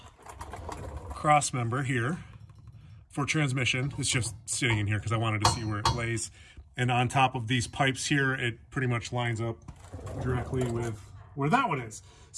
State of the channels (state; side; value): identical; both; correlation 1.00